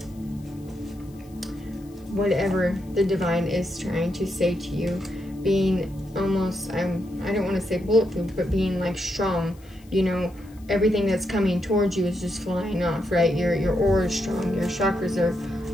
the divine is trying to say to you, being almost, I don't want to say bulletproof, but being like strong, you know. Everything that's coming towards you is just flying off, right? Your aura is strong, your chakras are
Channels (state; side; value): noise; left; hiss, 28 dB below the sound